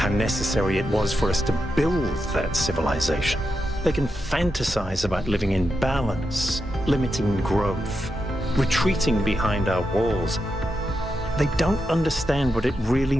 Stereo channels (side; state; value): both; normal; correlation 0.87